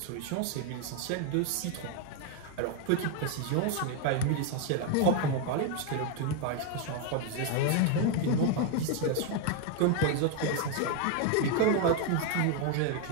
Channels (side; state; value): both; different; correlation 0.01